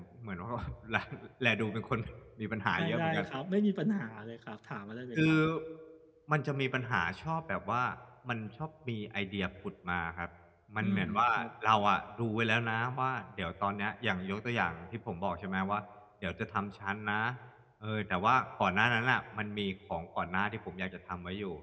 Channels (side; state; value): both; identical; correlation 1.00